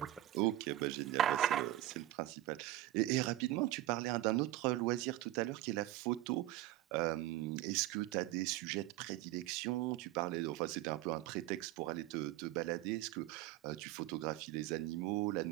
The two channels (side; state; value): left; quieter; 15.4 dB